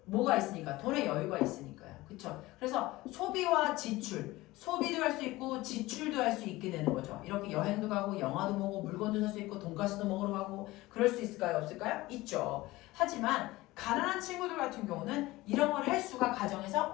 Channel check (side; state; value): right; quieter; 19.1 dB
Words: 뭐가 있으니까? 돈의 여유가 있으니까요. 그쵸? 그래서 소비와 지출, 소비도 할 수 있고 지출도 할 수 있게 되는 거죠. 이렇게 여행도 가고 영화도 보고 물건도 살 수 있고 돈가스도 먹으러 가고 그럴 수 있을까요? 없을까요? 있죠. 하지만 가난한 친구들 같은 경우는 이런 걸 할 수가 가정에서